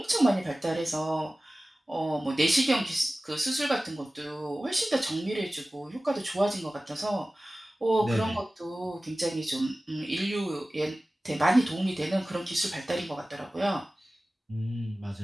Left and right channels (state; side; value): normal; both; correlation 0.97